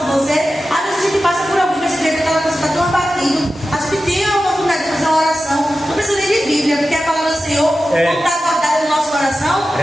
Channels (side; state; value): both; normal; correlation 0.93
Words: você? Às vezes a gente passa por alguém que a gente vê que aquela pessoa está tão abatido. A gente tem a oportunidade de fazer uma oração. Não precisa nem de Bíblia, porque a palavra do Senhor está guardada no nosso coração. A